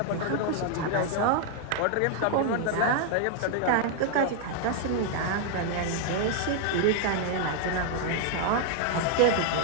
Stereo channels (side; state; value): both; different; correlation 0.00